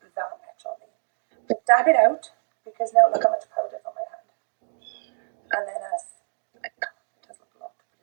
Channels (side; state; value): left; silent; digital silence